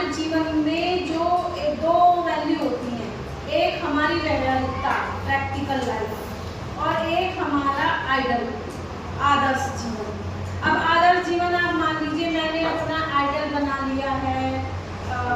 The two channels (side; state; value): both; identical; correlation 1.00